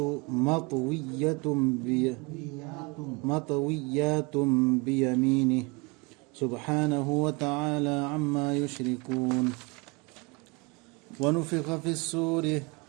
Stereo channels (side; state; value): left; quieter; 28.4 dB